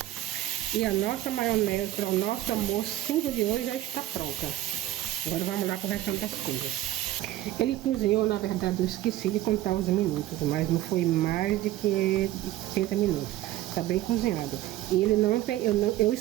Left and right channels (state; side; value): quieter; left; 14.8 dB